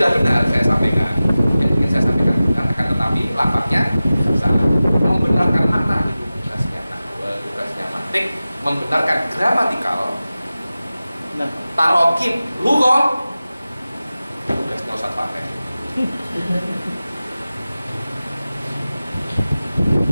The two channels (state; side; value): inverted; both; correlation -0.96